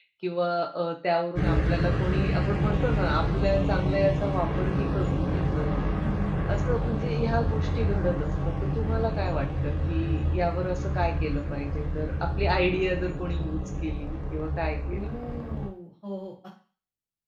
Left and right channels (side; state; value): both; identical; correlation 1.00